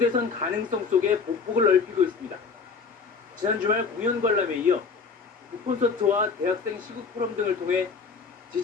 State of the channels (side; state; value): right; quieter; 5.1 dB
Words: 가능성 속에 보폭을 넓히고 있습니다. 지난 주말 공연 관람에 이어 콘서트와 대학생 시국 포럼 등을 통해